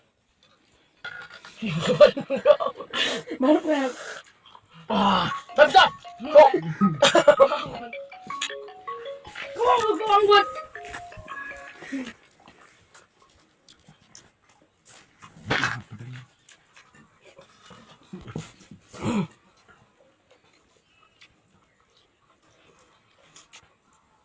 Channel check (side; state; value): both; identical; correlation 1.00